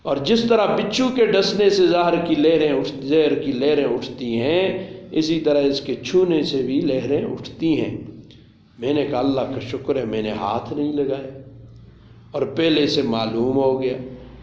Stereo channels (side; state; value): both; identical; correlation 1.00